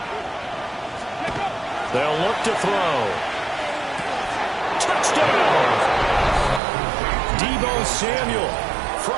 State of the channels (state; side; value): drops out; left; at 6.6 s